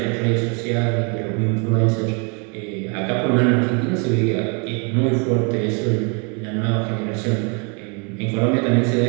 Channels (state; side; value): quieter; left; 35.1 dB